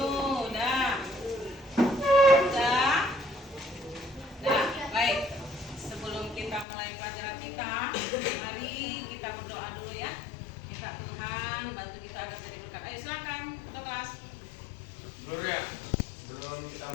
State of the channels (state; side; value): drops out; right; at 6.7 s